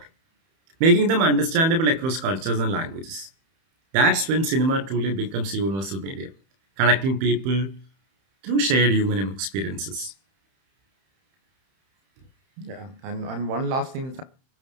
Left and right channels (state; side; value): late; left; 31 ms